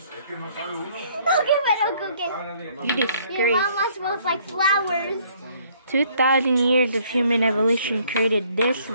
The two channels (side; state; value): both; inverted; correlation -0.62